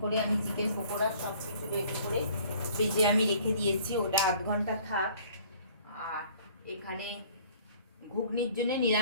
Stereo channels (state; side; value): inverted; both; correlation -0.54